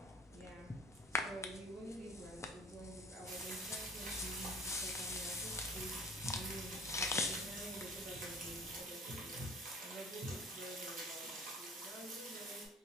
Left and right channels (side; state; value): both; normal; correlation 0.44